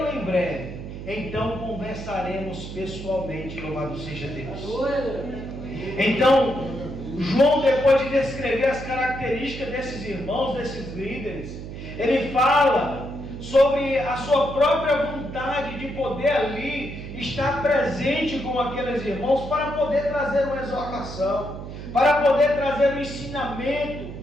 em breve. Então conversaremos pessoalmente, louvado seja Deus. Então, João, depois de descrever as características desses irmãos, desses líderes, ele fala sobre a sua própria vontade de poder ali estar presente com aqueles irmãos para poder trazer uma exortação, para poder trazer um ensinamento,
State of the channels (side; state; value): right; noise; hum, 10 dB below the sound